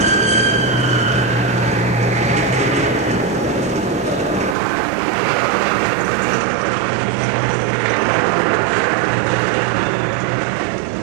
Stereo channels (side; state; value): left; drops out; at 4.5 s